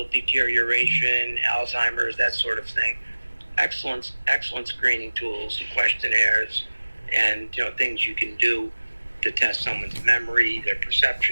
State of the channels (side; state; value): both; inverted; correlation -1.00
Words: deterioration, Alzheimer's, that sort of thing. Excellent screening tools, questionnaires, and, you know, things you can do to test someone's memory, their